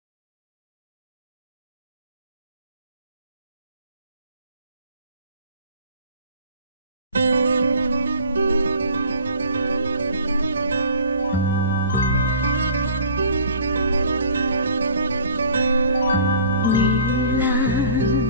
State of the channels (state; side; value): inverted; both; correlation -0.48